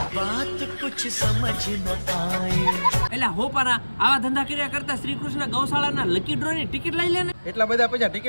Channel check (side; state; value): both; inverted; correlation -1.00